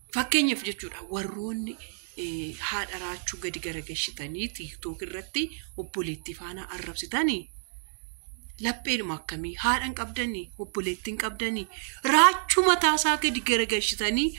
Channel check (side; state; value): left; silent; digital silence